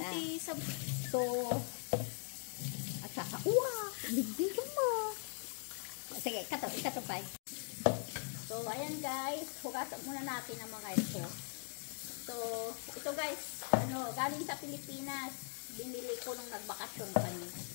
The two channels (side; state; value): right; silent; 51 dB below the other